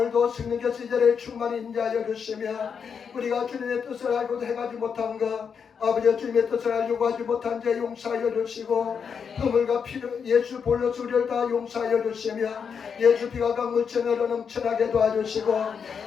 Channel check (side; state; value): right; quieter; 6.6 dB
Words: 성령께서 이 자리에 충만히 인도하여 주시며 우리가 주님의 뜻을 알고도 행하지 못한 것 아버지 주님의 뜻을 알려고 하지 못한 죄 용서하여 주시고 허물과 피로 예수 볼로서 우리를 다 용서하여 주시며 예수 피가 강물처럼 넘쳐나게 도와주시고